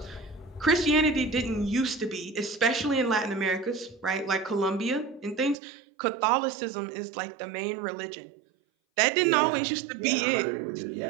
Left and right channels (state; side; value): drops out; left; at 5.6 s